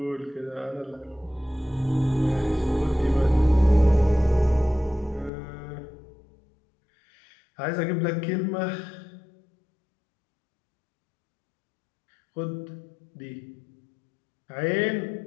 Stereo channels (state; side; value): drops out; right; at 5.3 s